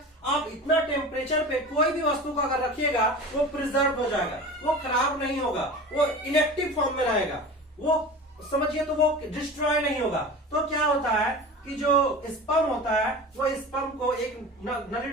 आप इतना टेम्परेचर पे कोई भी वस्तु को अगर रखिएगा वो प्रिजर्व हो जाएगा, वो खराब नहीं होगा, वो इनएक्टिव फॉर्म में रहेगा, वो समझिए तो वो डिस्ट्रॉय नहीं होगा। तो क्या होता है कि जो स्पर्म होता है वो स्पर्म को एक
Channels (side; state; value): both; normal; correlation 0.34